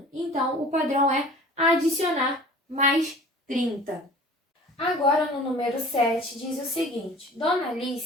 Então, o padrão é adicionar mais 30. Agora, no número 7, diz o seguinte: Dona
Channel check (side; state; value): both; normal; correlation 0.44